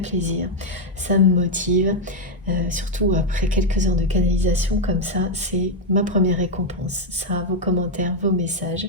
Ça me motive. Surtout après quelques heures de canalisation comme ça, c'est ma première récompense. Ça, vos commentaires, vos messages.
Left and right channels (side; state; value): both; normal; correlation 0.02